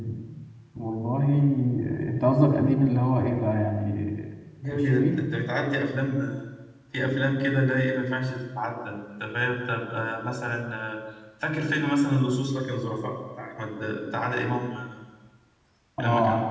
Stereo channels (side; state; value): both; identical; correlation 1.00